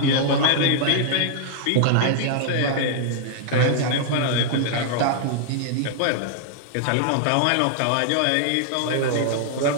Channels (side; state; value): both; different; correlation -0.01